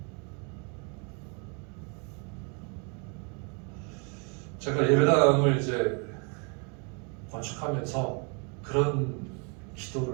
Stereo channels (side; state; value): left; quieter; 35.5 dB